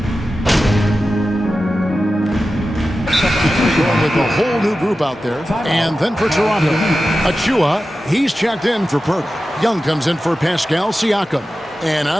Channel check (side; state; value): both; normal; correlation 0.93